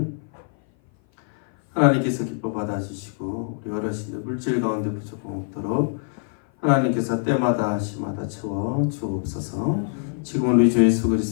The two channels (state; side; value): silent; right; 56 dB below the other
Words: 하나님께서 기뻐 받아주시고 우리 어르신들 물질 가운데 부족함 없도록 하나님께서 때마다 시마다 채워 주옵소서. 지금 우리 주 예수